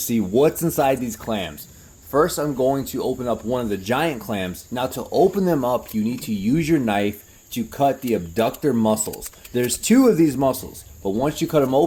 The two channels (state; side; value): identical; both; correlation 1.00